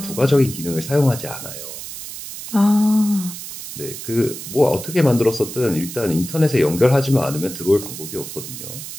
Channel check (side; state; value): right; noise; hiss, 10 dB below the sound